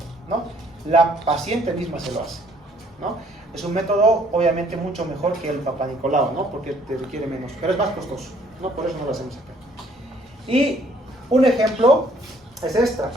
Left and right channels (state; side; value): normal; both; correlation 0.63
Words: ¿no? La paciente misma se lo hace, ¿no? Es un método obviamente mucho mejor que el Papa Nicolau, ¿no? Porque te requiere menos, pero es más costoso, ¿no? Por eso no lo hacemos acá. Y un ejemplo es esta.